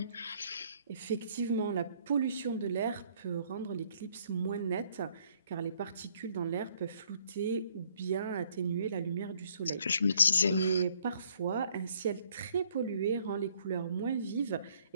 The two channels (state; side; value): inverted; both; correlation -0.64